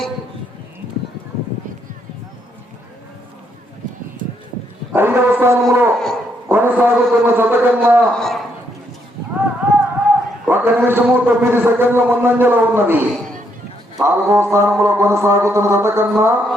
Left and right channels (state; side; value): normal; both; correlation 0.74